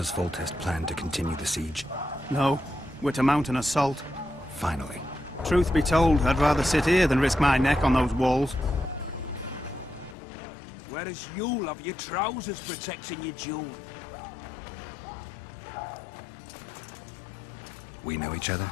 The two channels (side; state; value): right; drops out; at 10.2 s